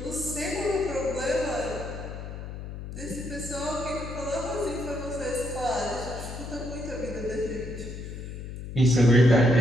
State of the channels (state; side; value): noise; left; hum, 9 dB below the sound